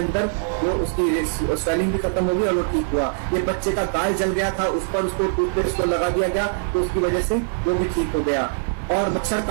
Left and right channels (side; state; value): left; silent; 64 dB below the other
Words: वो उसकी स्वेलिंग भी खत्म हो गई और वो ठीक हुआ। ये बच्चे का गाल जल गया था, उस पर उसको टूथपेस्ट को लगा दिया गया तो उसकी वजह से वो भी ठीक हो गया। और मच्छर